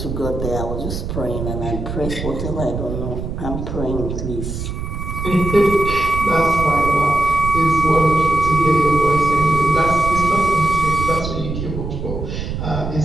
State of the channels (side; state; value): right; noise; rumble, 5 dB below the sound